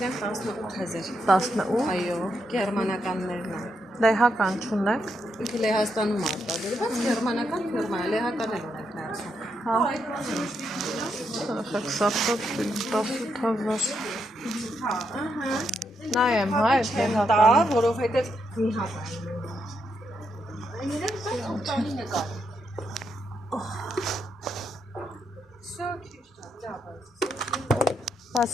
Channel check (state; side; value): normal; both; correlation 0.80